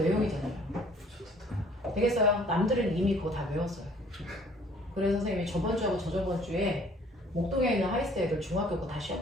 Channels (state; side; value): normal; both; correlation 0.57